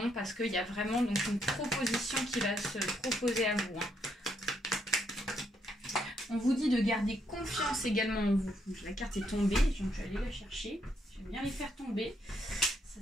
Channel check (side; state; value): both; normal; correlation 0.75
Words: parce qu'il y a vraiment donc une proposition qui va se proposer à vous. On vous dit de garder confiance également en vous. Donc, la carte est tombée, donc je vais aller la chercher. J'aime bien les faire tomber. Ça,